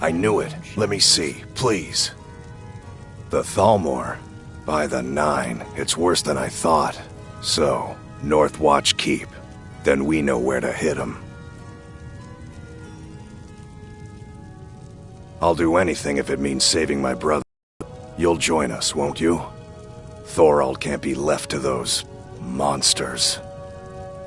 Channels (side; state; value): both; identical; correlation 1.00